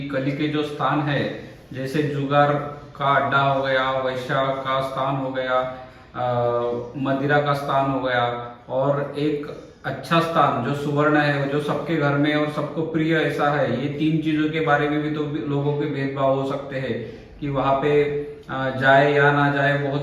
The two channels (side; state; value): both; identical; correlation 1.00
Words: कली के जो स्थान है, जैसे जुगार का अड्डा हो गया, वैश्या का स्थान हो गया, मदिरा का स्थान हो गया, और एक अच्छा स्थान जो सुवर्ण है, जो सबके घर में और सबको प्रिय ऐसा है। ये 3 चीजों के बारे में भी तो लोगों के भेदभाव हो सकते हैं कि वहां पे जाए या ना जाए,